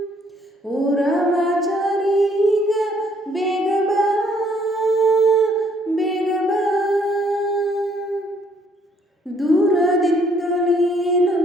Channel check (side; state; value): both; normal; correlation 0.65